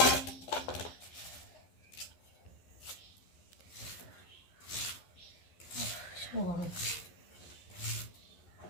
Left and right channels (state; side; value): late; right; 11 ms